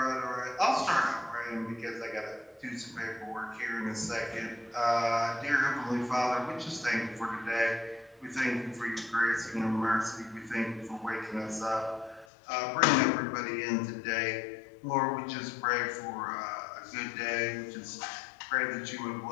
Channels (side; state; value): right; drops out; at 12.2 s